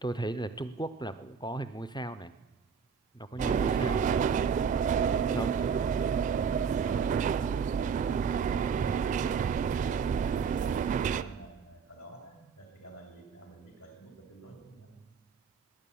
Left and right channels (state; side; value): quieter; left; 6.2 dB